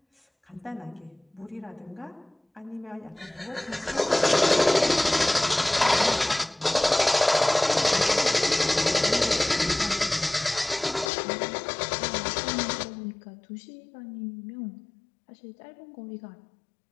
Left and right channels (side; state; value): right; drops out; at 11.1 s